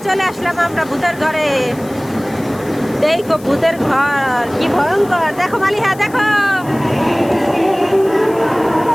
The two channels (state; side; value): noise; left; hiss, 22 dB below the sound